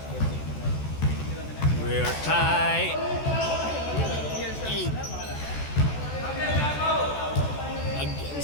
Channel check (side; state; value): right; late; 14 ms